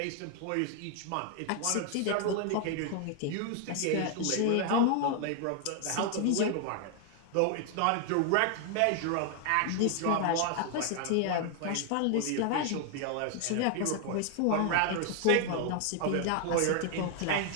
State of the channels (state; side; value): different; both; correlation 0.00